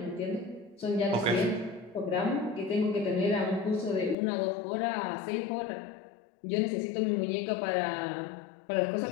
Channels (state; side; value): drops out; right; at 4.2 s